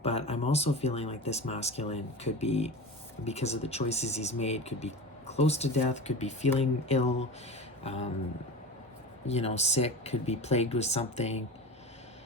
But I'm also feeling like this masculine could be, because of the choices he's made, could be close to death, could be feeling ill, you know, sick, could be plagued with something.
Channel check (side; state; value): both; normal; correlation 0.30